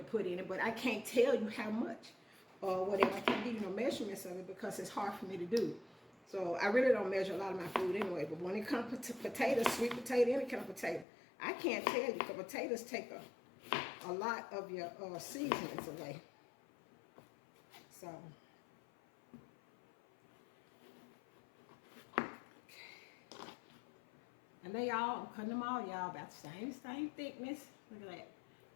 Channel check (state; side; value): drops out; right; at 11.1 s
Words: put in it, but I can't tell you how much or whatever. I can't give you no measurements of it because it's hard for me to do. So I really don't measure a lot of my food anyway. But when it comes to potatoes, sweet potato, any kind of potato, I can't tell you because potatoes take a lot of your seasonings away. So. And they all, I'm cutting them all, y'all, about the same thickness. Look at that.